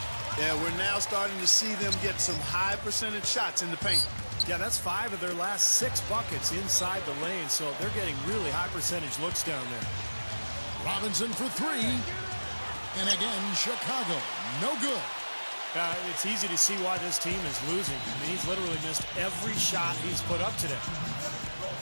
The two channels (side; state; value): both; inverted; correlation -1.00